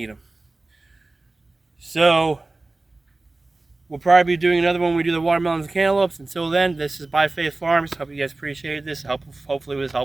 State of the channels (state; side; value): quieter; left; 3.1 dB